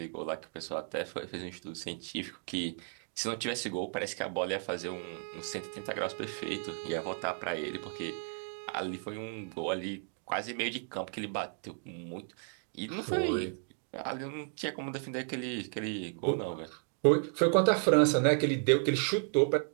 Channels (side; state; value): left; silent; 55 dB below the other